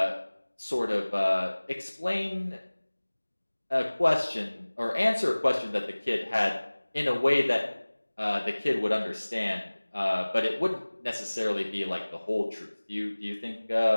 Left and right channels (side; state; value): both; inverted; correlation -1.00